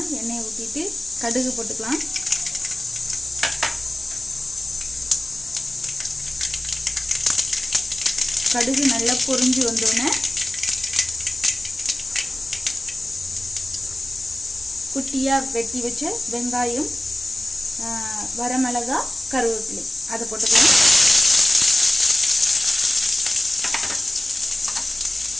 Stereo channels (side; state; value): both; normal; correlation 0.96